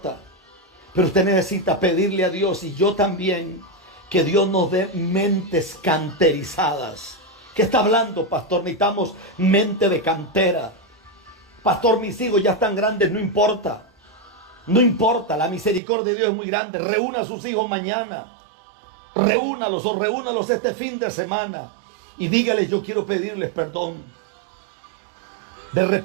Pero usted necesita pedirle a Dios, y yo también, que Dios nos dé mentes canterizadas. ¿Qué está hablando, pastor? Necesitamos mente de cantera. Pastor, mis hijos ya están grandes, no importa. No importa, la misericordia de Dios es muy grande. Reúna a sus hijos mañana. Reúnalos o reúnalos este fin de semana. Y dígales, yo quiero pedirles perdón. De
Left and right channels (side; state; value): left; drops out; at 15.8 s